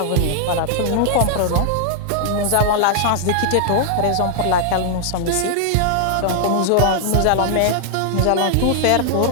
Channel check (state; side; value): different; both; correlation -0.01